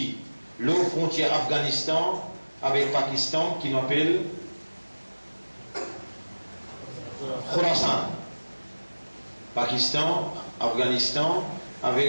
l'eau frontière Afghanistan avec Pakistan, qui l'appelle Khorasan. Pakistan, Afghanistan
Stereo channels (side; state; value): both; inverted; correlation -1.00